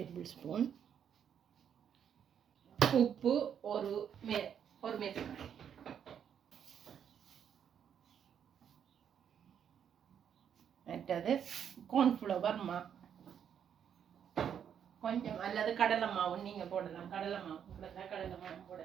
ஸ்பூன், உப்பு ஒரு மேசக்கரண்டி, மற்றது கார்ன்ஃப்ளவர் கொஞ்சம், அல்லது கடலை மாவு நீங்க போடலாம். கடலை மாவு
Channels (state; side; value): quieter; left; 8.5 dB